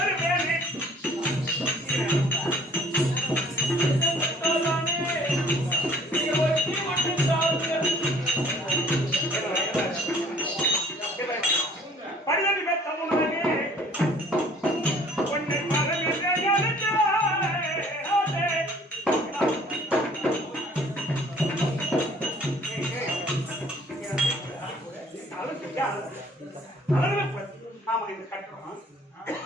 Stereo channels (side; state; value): both; normal; correlation 0.55